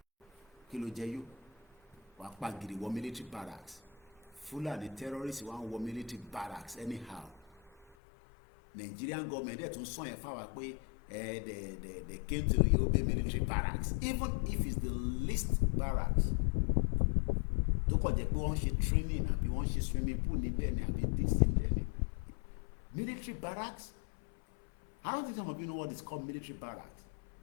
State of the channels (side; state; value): right; drops out; at 7.9 s